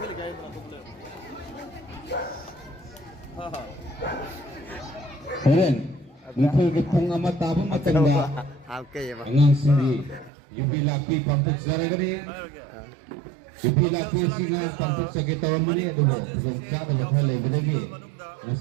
ꯂꯩꯀꯥꯏ ꯑꯇꯣꯞꯄ ꯂꯩ ꯍꯣꯔꯦꯟ ꯅꯨꯡꯊꯤꯜꯒꯤ ꯄꯨꯡ 1 ꯇꯥꯕ ꯃꯇꯝꯗ ꯑꯉꯥꯡꯁꯤꯡꯒꯤ ꯌꯨꯕꯤ ꯂꯥꯛꯄꯤ ꯄꯥꯡꯊꯣꯛꯆꯔꯒꯅꯤ ꯌꯨꯕꯤ ꯂꯥꯛꯄꯤꯁꯤꯡꯅ ꯄꯥꯡꯊꯣꯛꯆꯒꯦ ꯇꯧꯔꯝꯕꯅꯤ ꯑꯗꯨꯒ ꯈꯨꯗꯣꯡꯆꯥꯗꯕ ꯈꯔ ꯂꯩꯕꯗꯒꯤ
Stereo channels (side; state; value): left; drops out; at 10.3 s